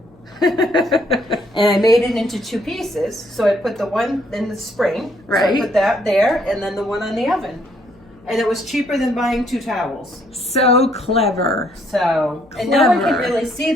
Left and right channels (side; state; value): left; noise; hum, 28 dB below the sound